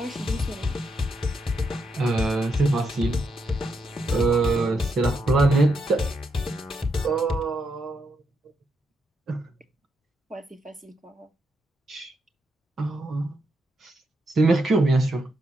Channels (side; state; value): both; normal; correlation 0.81